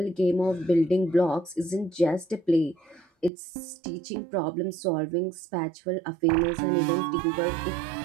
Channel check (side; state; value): left; drops out; at 3.3 s